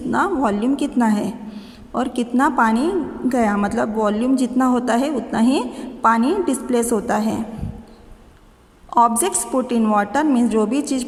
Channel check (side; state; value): both; identical; correlation 1.00